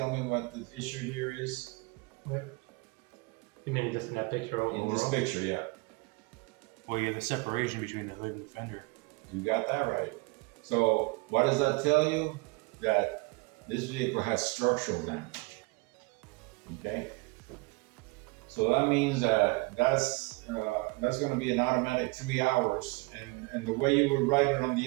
me what the issue here is? What? You mean just in that picture overall? In this picture, yeah. Well, you have the separation between the hood and the fender. You got that right. So what does that tell you? That this vehicle has structural damage. Okay. So that means that's going to be an automatic 3 hours, and the way you would write it on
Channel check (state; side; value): quieter; left; 27.1 dB